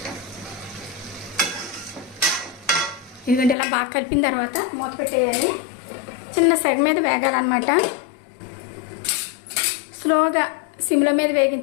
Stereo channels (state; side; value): drops out; right; at 3.6 s